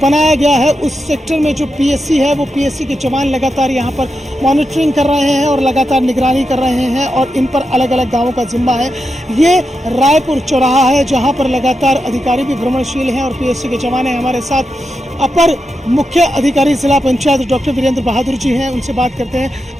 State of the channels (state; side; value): normal; both; correlation 0.87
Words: गया है उस सेक्टर में जो पीएससी है वो पीएससी के जवान लगातार यहाँ पर मॉनिटरिंग कर रहे हैं और लगातार निगरानी कर रहे हैं और इन पर अलग अलग गांवों का जिम्मा है। ये रायपुर चौराहा है जहाँ पर लगातार अधिकारी भी भ्रमणशील हैं और पीएससी के जवान हैं। हमारे साथ अपर मुख्य अधिकारी जिला पंचायत डॉक्टर वीरेंद्र बहादुर जी हैं, उनसे बात करते हैं।